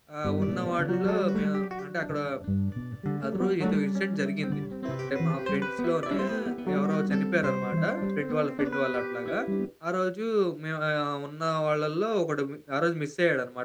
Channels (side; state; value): both; identical; correlation 1.00